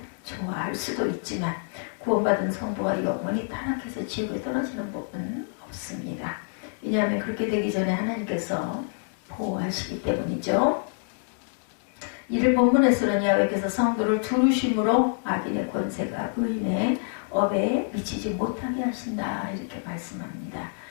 좋아할 수도 있지만 구원받은 성도가 영원히 타락해서 지옥에 떨어지는 법은 없습니다. 왜냐하면 그렇게 되기 전에 하나님께서 보호하시기 때문이죠. 이를 본문에서는 야훼께서 성도를 두루심으로 악인의 권세가 의인의 업에 미치지 못하게 하신다 이렇게 말씀합니다.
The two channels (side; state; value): right; silent; 57 dB below the other